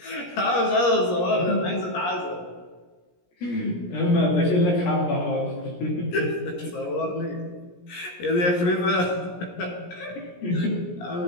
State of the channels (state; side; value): late; right; 17 ms